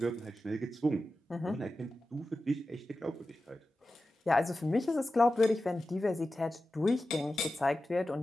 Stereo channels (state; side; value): normal; both; correlation 0.94